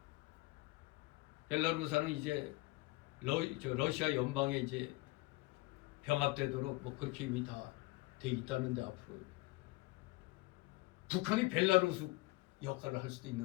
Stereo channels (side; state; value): right; quieter; 21.9 dB